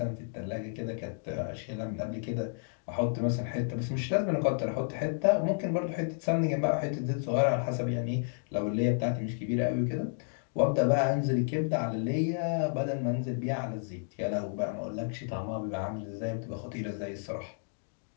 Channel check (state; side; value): silent; right; digital silence